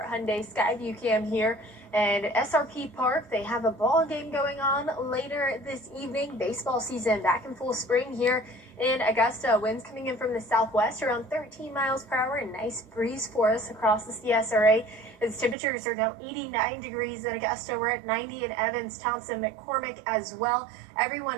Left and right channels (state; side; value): drops out; left; at 15.6 s